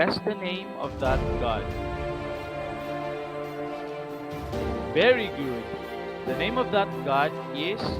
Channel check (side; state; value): both; identical; correlation 1.00